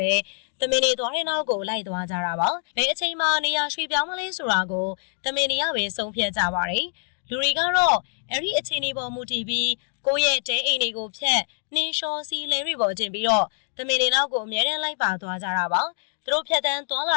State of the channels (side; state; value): right; silent; 62 dB below the other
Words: ဲတမင်တွေသွားတဲ့နောက်ကိုလိုက်သွားကြတာပါ။ဘယ်အချိန်မှနေရာရွှေ့ပြောင်းမလဲဆိုတာကိုတမင်တွေကပဲဆုံးဖြတ်ကြပါတယ်။လူတွေကတော့အဲ့ဒီအချိန်တွေပေါ်မူတည်ပြီးကိုယ့်ရဲ့တဲအိမ်တွေကိုဖျက်နှင်းလျှောစီးလဲတွေပေါ်တင်ပြီးတော့တမင်တွေနောက်ကိုအမြဲတမ်းလိုက်ပါသွားကြတာပါ။သူတို့ဖြတ်တန်းသွားလာ